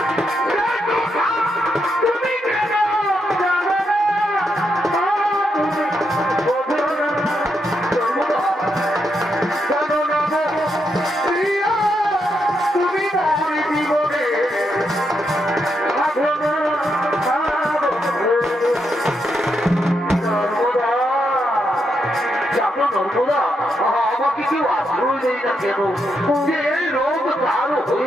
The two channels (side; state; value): both; normal; correlation 0.81